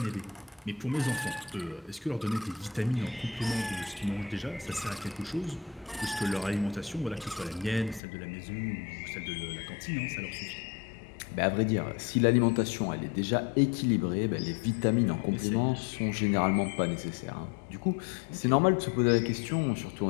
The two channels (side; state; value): right; drops out; at 8.0 s